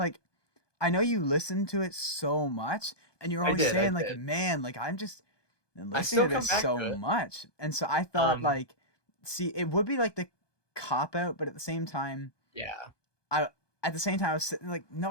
I know you listened to it so much, and you're always I saying like, did. man, like I'm just I listening still to come this back so to it. much, and so I thought Um, like, see, it would be like the cop out, but at the same time, yeah. I at the same time I was sitting like, no,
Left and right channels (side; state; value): right; late; 1.2 ms